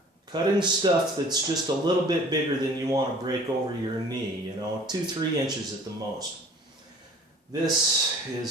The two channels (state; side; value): normal; both; correlation 0.48